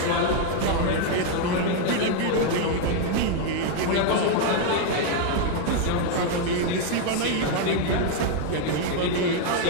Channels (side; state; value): both; different; correlation 0.00